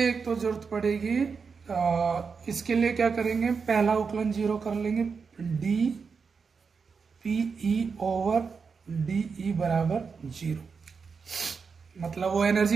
तो जरूरत पड़ेगी, इसके लिए क्या करेंगे, पहला उकलन जीरो कर लेंगे, D P E over D E बराबर जीरो। मतलब वो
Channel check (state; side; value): quieter; left; 5.4 dB